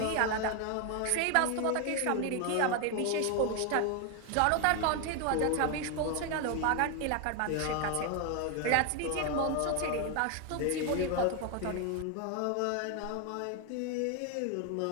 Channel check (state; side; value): different; both; correlation 0.01